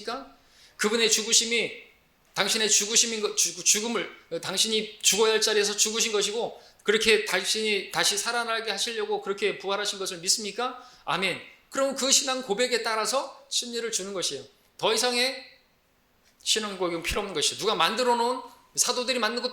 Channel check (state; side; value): identical; both; correlation 1.00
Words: 그분의 죽으심이 당신의 죽음을 당신이 죽어야 할 자리에서 죽으신 것이고 그렇게 당신이 다시 살아나게 하시려고 그렇게 부활하신 것을 믿습니까? 아멘. 그럼 그 신앙 고백에 따라서 침례를 주는 것이에요. 더 이상의 신앙 고백은 필요 없는 것이에요. 누가 만들어 놓은, 사도들이 만든